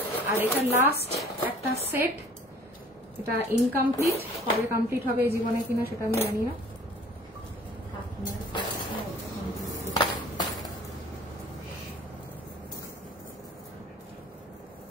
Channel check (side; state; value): both; normal; correlation 0.51